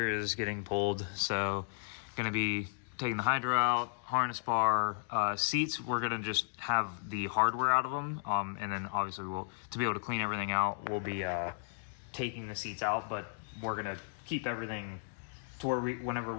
is getting pulled. So gonna be taking the hydro out, harness bar, seats. We're gonna just have the hardware out of them, and then obviously to be able to clean everything out, we'll be taking the seats out. But we're gonna keep everything to where whenever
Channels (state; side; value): silent; right; digital silence